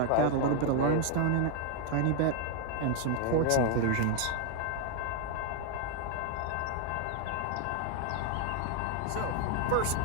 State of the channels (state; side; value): different; both; correlation 0.00